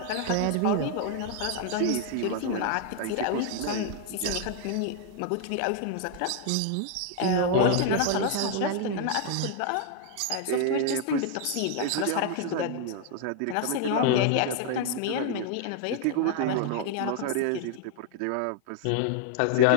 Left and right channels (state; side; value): different; both; correlation 0.00